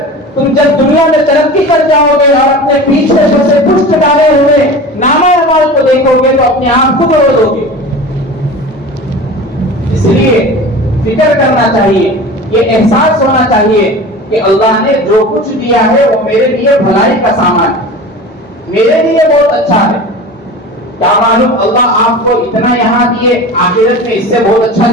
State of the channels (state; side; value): normal; both; correlation 0.35